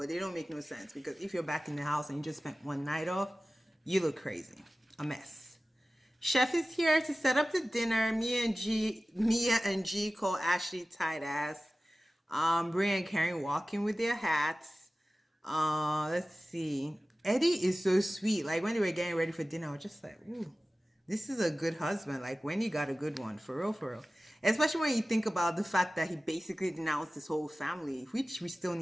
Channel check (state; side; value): normal; both; correlation 0.96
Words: they don't make no sense because if you're back in the house and you just spent one night off, you look crazy. A mess. Chef is here to set up the dinner. Mia and G call Ashley tight ass. Bria and Karen walking with their hats. Let's see. Eddie is so sweet. Like when they were getting ready for dinner, I was just like, ooh, this is a good husband. Like when you got a good one, for real, for real. Especially when you think about the fact that he basically denounced his whole family, which we still